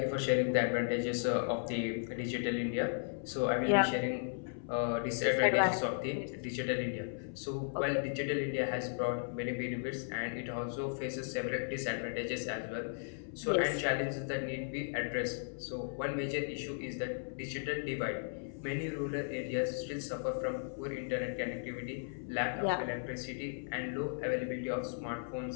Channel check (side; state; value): right; silent; 54 dB below the other